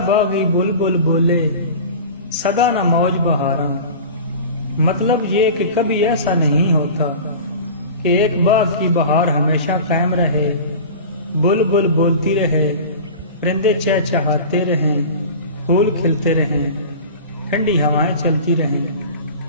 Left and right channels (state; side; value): inverted; both; correlation -0.35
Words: باغی بلبل بولے سدا نہ موج بہاراں۔ مطلب یہ کہ کبھی ایسا نہیں ہوتا کہ ایک باغ کی بہار ہمیشہ قائم رہے، بلبل بولتی رہے، پرندے چہچہاتے رہیں، پھول کھلتے رہیں، ٹھنڈی ہوائیں چلتی رہیں،